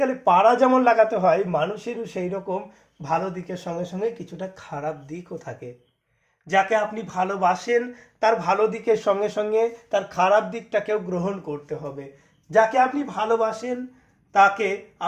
গেলে পাড়া যেমন লাগাতে হয়, মানুষেরও সেই রকম ভালো দিকের সঙ্গে সঙ্গে কিছুটা খারাপ দিকও থাকে। যাকে আপনি ভালোবাসেন তার ভালো দিকের সঙ্গে সঙ্গে তার খারাপ দিকটাকেও গ্রহণ করতে হবে। যাকে আপনি ভালোবাসেন তাকে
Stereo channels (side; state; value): both; identical; correlation 1.00